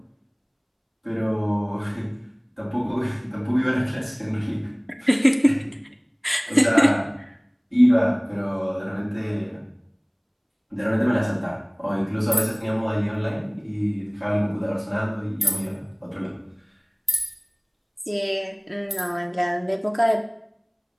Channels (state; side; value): identical; both; correlation 1.00